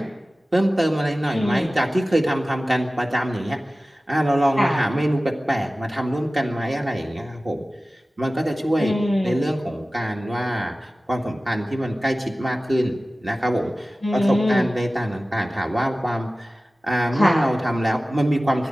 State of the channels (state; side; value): normal; both; correlation 0.97